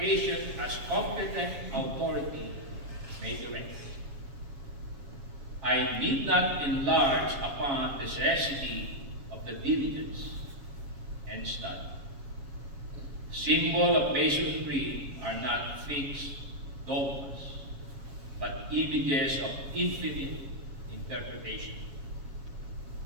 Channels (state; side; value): late; left; 7.3 ms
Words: as competent authority may direct. I need not enlarge upon the necessity of the diligence and study. Symbol of Masonry are not fixed dogmas, but images of infinite interpretation.